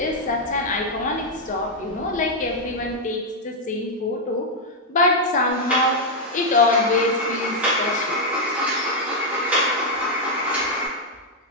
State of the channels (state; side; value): normal; both; correlation -0.01